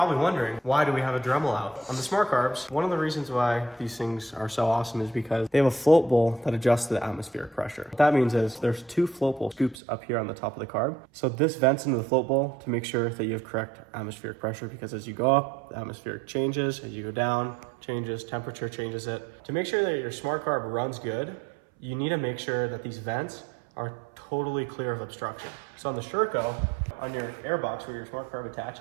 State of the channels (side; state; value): left; drops out; at 9.8 s